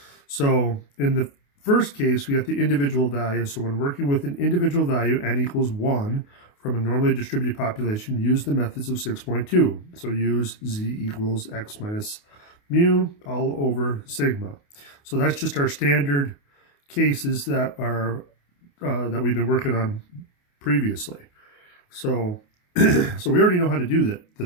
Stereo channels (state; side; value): late; right; 28 ms